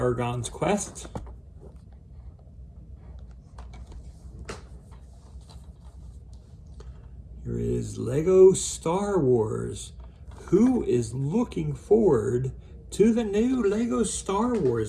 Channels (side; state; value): both; identical; correlation 1.00